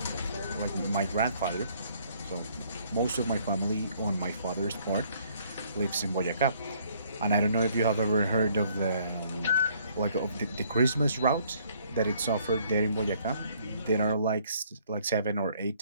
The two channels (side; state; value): both; inverted; correlation -0.64